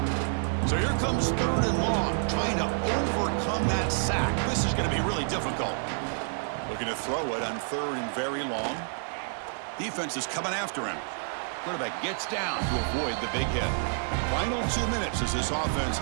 So here comes 3rd and long, trying to overcome that sack. This is going to be really difficult. Looking to throw it on 3rd and very long. Defense is coming after him. Quarterback gets down to avoid the big hit. Final 2 minutes as this offense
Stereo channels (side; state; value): left; silent; 59 dB below the other